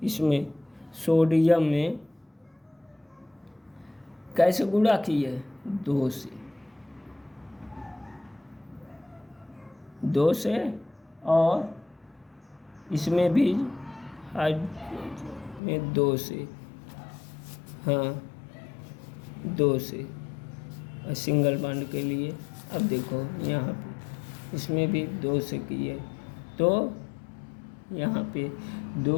इसमें सोडियम में कैसे गुणा किए, 2 से, और इसमें भी में 2 से, हाँ 2 से सिंगल बॉन्ड के लिए। अब देखो यहाँ पे इसमें भी 2 से किए, तो यहाँ पे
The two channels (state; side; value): drops out; right; at 15.6 s